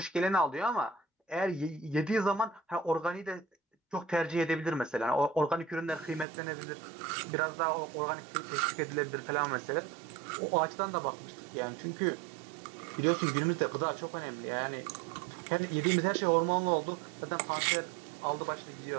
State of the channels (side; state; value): left; drops out; at 6.2 s